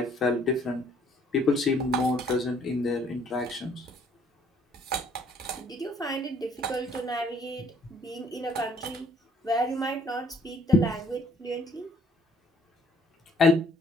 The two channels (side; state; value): both; normal; correlation 0.61